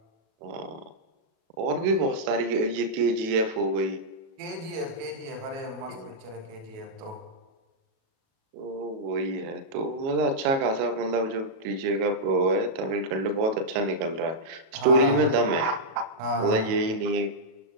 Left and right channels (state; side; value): late; left; 37 ms